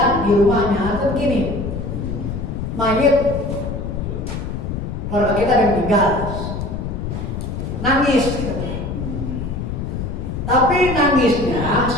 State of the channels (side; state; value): left; noise; rumble, 5 dB below the sound